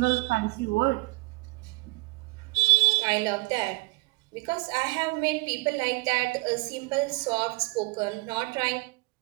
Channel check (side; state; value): left; quieter; 26.2 dB